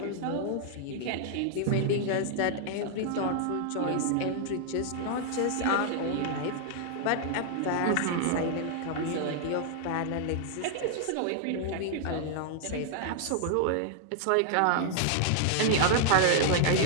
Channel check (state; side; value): different; both; correlation -0.01